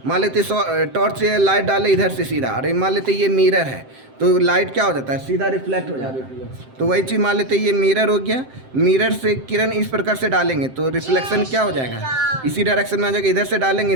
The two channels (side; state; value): left; late; 7.7 ms